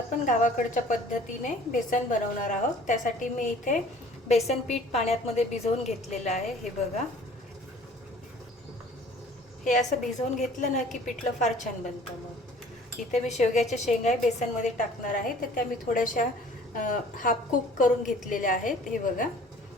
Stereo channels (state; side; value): normal; both; correlation 0.50